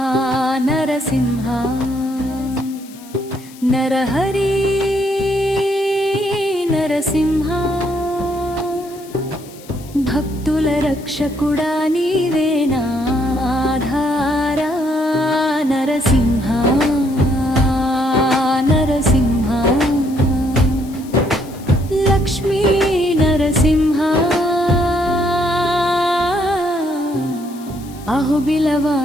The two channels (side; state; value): left; noise; hiss, 21 dB below the sound